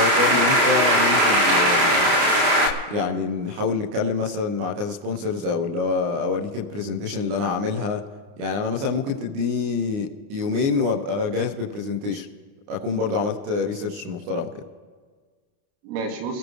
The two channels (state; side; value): late; left; 29 ms